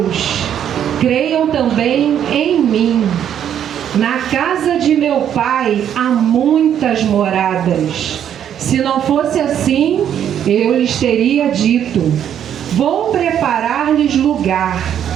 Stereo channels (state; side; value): quieter; left; 9.6 dB